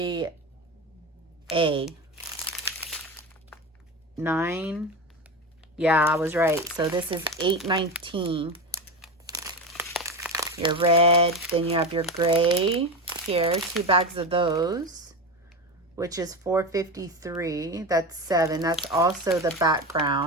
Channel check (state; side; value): normal; both; correlation 0.21